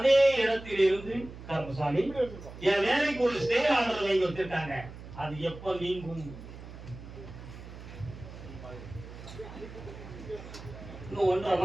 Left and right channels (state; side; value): noise; right; hum, 14 dB below the sound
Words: இடத்தில் இருந்து கர்மசாமி என் வேலைக்கு ஒரு ஸ்டே ஆர்டர் வாங்கி வச்சிருக்காங்க. அது எப்ப நீங்கும்? இன்னும் 1.5